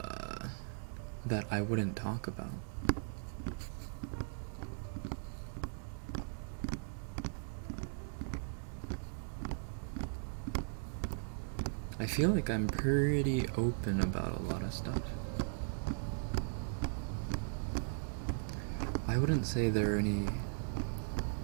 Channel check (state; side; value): silent; left; digital silence